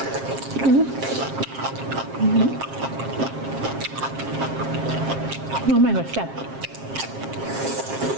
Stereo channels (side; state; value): left; late; 7.5 ms